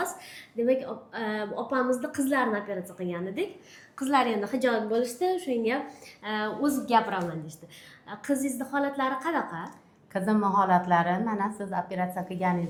Demak, opamizni qizlarini operatsiya qilgan edik. Qizlar endi hijolat bo'lishdi, shunga o'zim gapiraman deydi. Qizingizni holatlari qanaqa? Qizimni holatlari mana siz operatsiya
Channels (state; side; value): identical; both; correlation 1.00